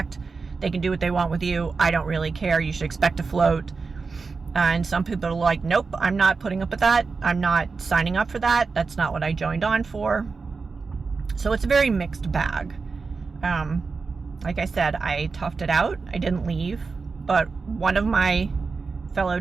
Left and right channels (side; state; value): left; quieter; 4.5 dB